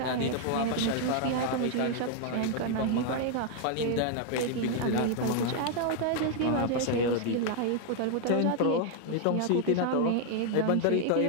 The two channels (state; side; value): different; both; correlation 0.00